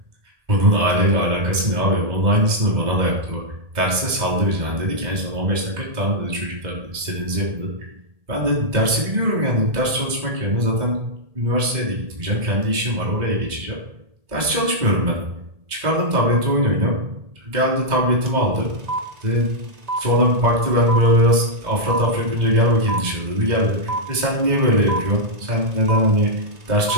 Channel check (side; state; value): left; late; 2.0 ms